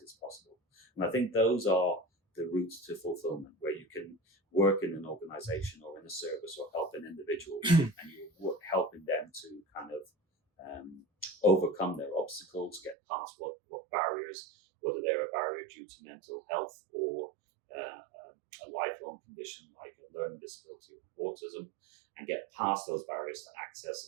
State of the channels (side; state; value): left; drops out; at 13.0 s